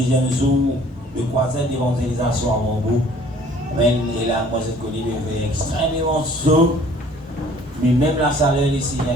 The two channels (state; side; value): normal; both; correlation 0.54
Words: jour de croisade d'évangélisation à Montbeau. Amen. Et là, moi, je connais des extrêmement chaud, mais même la salaire, le Seigneur est